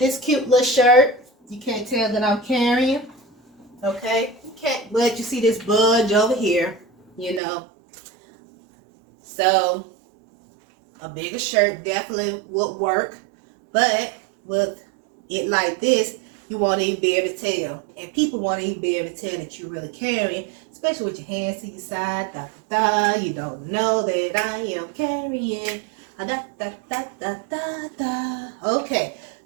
cute little shirt, you can't tell that I'm carrying. Okay, you can't, but you see this budge over here, you know. So a bigger shirt definitely would work, but with it like this, You want to even be able to tell. And people want to even be able to tell that you're really carrying, especially with your hands to your side. Da, da, da. You don't know that I am carrying. Da, da, da, da, da, da. Okay,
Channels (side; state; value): left; drops out; at 7.4 s